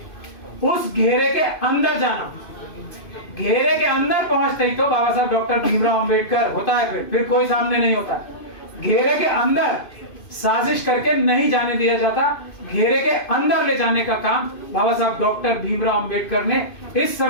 उस घेरे के अंदर जाना। घेरे के अंदर पहुंचते ही तो बाबा साहब डॉक्टर भीमराव अंबेडकर होता है, फिर कोई सामने नहीं होता। घेरे के अंदर साजिश करके नहीं जाने दिया जाता, घेरे के अंदर ले जाने का काम बाबा साहब डॉक्टर भीमराव अंबेडकर ने इस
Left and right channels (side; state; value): right; late; 2.5 ms